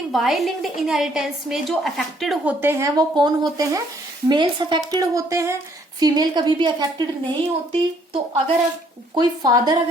वाई लिंक्ड इनहेरिटेंस में जो अफेक्टेड होते हैं वो कौन होते हैं, मेल्स अफेक्टेड होते हैं, फीमेल कभी भी अफेक्टेड नहीं होती। तो अगर कोई फादर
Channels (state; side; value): normal; both; correlation 0.65